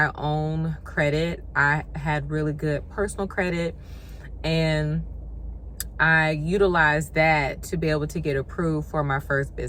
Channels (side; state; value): both; identical; correlation 1.00